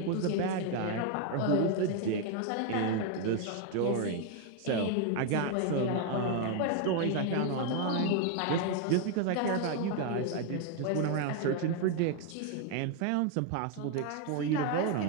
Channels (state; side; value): different; both; correlation 0.01